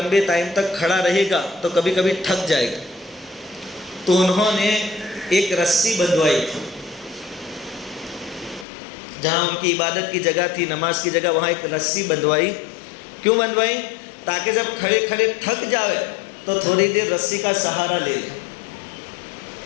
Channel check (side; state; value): right; drops out; at 8.7 s